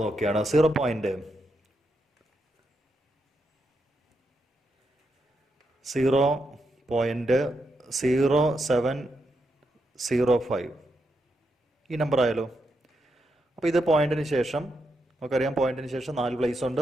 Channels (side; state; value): both; normal; correlation 0.83